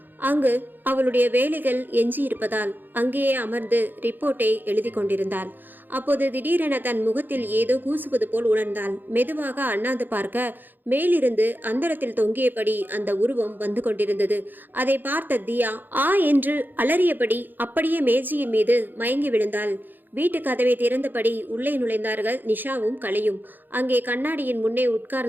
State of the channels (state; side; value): late; left; 0.089 ms